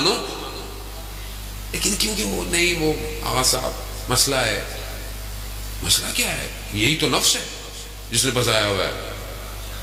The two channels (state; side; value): identical; both; correlation 1.00